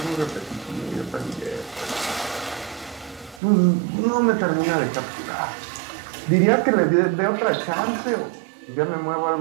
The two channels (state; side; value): drops out; left; at 3.4 s